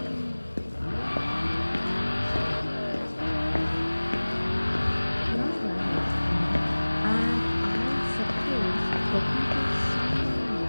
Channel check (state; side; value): inverted; both; correlation -1.00